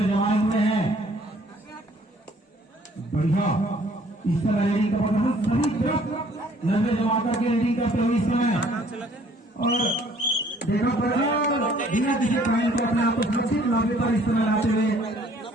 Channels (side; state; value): both; normal; correlation 0.59